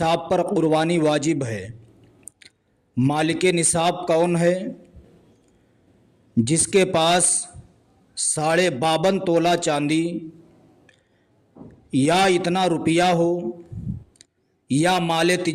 پر قربانی واجب ہے۔ مالک نصاب کون ہے؟ جس کے پاس 52.5 تولہ چاندی یا اتنا روپیہ ہو یا مال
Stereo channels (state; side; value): identical; both; correlation 1.00